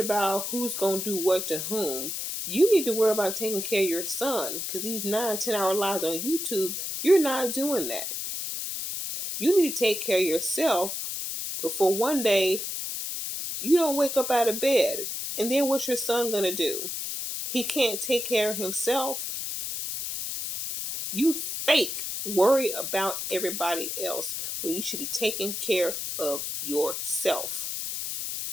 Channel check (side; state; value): left; noise; hiss, 4 dB below the sound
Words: about who's going to do what to whom? You need to worry about taking care of your son, because these 9-10 hour lives on YouTube, you're not doing that. You need to take care of yourself before one day you don't wake up out of bed. And then what's your son going to do? He can't take care of himself. You fake worry about everybody else when you should be taking care of yourself